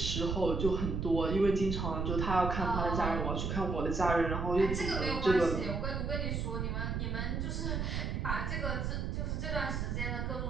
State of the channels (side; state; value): right; noise; rumble, 1 dB below the sound